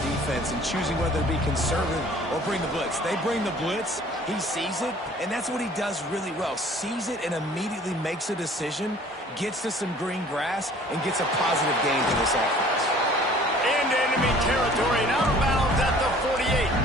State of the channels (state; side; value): normal; both; correlation 0.52